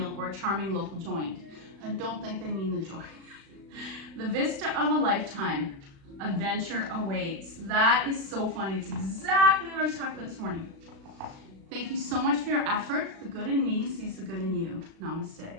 or a charming local joint. I don't think they mean the joint. The vista of a lifetime. Adventure awaits. That is so funny. It's exactly what I was talking about this morning. Thank you so much for your effort. The good in me sees the good in you.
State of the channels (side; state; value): left; late; 36 ms